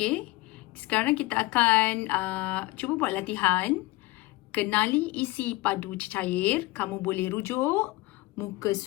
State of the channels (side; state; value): right; quieter; 20.5 dB